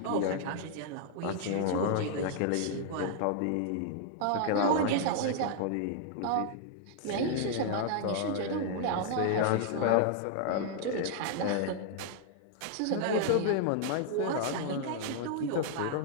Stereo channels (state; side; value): different; both; correlation -0.01